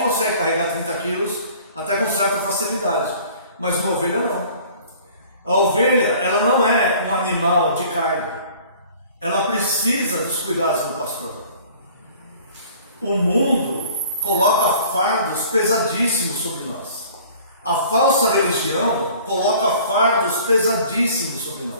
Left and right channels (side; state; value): both; inverted; correlation -0.50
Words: carregar 30 quilos até com certa facilidade, mas uma ovelha não. A ovelha, ela não é um animal de carga. Ela precisa dos cuidados do pastor. O mundo coloca fardos pesadíssimos sobre nós. A falsa religião coloca fardos pesadíssimos sobre